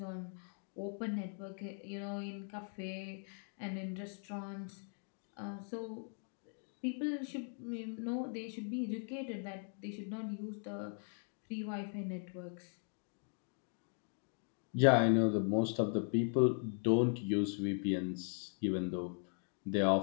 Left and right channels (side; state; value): right; silent; 52 dB below the other